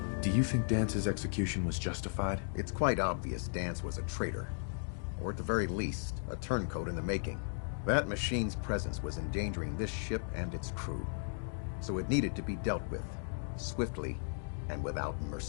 Do you think Dance's execution was justified? It's quite obvious Dance was a traitor. Or at the very least, a turncoat in the making. That machine's presence was endangering this ship and its crew. So it needed to be dealt with, swiftly and without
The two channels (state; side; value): silent; right; digital silence